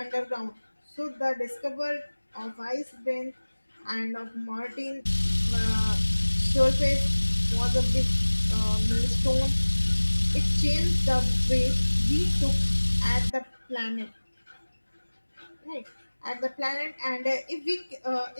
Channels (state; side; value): inverted; both; correlation -1.00